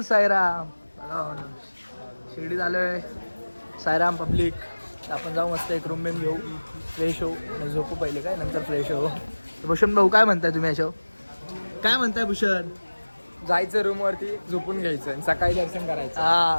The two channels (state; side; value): inverted; both; correlation -1.00